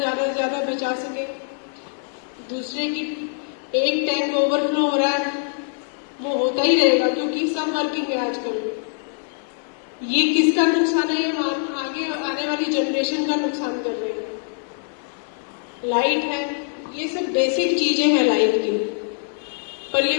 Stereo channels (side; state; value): right; silent; 63 dB below the other